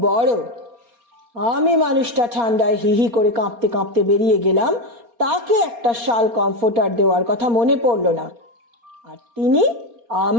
বড়। আমি মানুষটা ঠান্ডায় হিহি করে কাঁপতে কাঁপতে বেরিয়ে গেলাম, তাকে একটা শাল কমফোর্টার দেওয়ার কথা মনে পড়ল না, আর তিনি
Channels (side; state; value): left; late; 4.3 ms